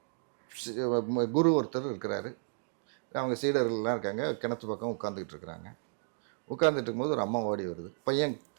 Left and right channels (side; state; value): left; silent; digital silence